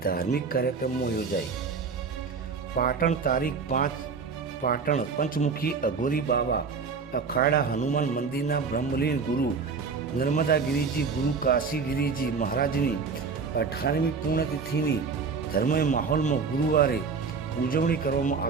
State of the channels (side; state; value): left; quieter; 5.1 dB